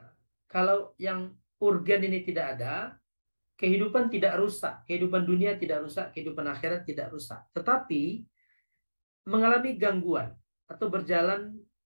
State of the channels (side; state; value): both; inverted; correlation -1.00